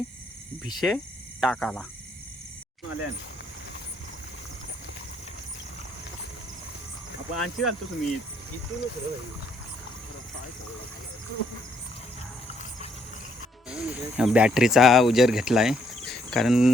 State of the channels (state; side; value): normal; both; correlation 0.70